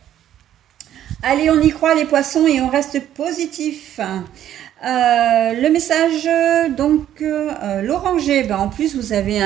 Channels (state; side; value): quieter; left; 11.3 dB